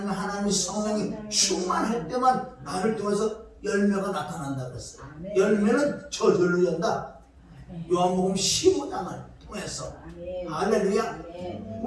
성령이 충만할 때만 나를 통해서 열매가 나타난다 그랬어요. 열매는 저절로 연다. 요한복음 15장을 통해서. 할렐루야.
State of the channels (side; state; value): both; identical; correlation 1.00